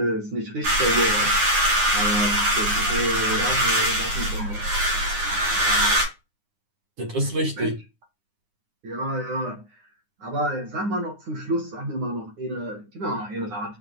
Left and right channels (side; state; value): left; late; 9.7 ms